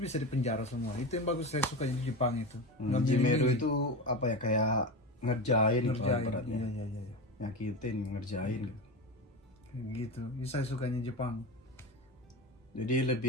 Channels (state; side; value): normal; both; correlation 0.22